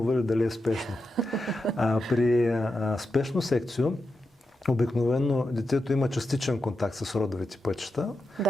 или дали е спешно. При спешно секцио обикновено детето има частичен контакт с родовите пътища.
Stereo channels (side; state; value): both; normal; correlation 0.88